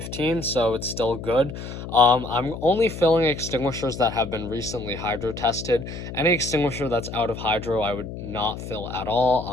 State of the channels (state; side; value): noise; left; hum, 9 dB below the sound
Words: so it's still good. I'm only filling extinguishers that have been recently hydro tested. Any extinguisher that's out of hydro, I would not fill at